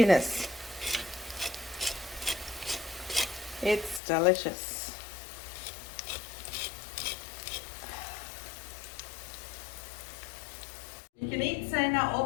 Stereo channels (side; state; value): right; drops out; at 4.0 s